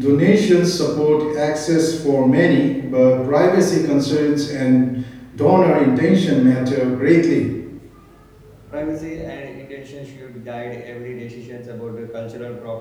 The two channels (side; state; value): both; identical; correlation 1.00